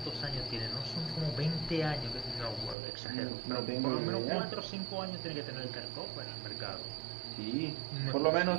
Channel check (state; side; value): drops out; left; at 2.8 s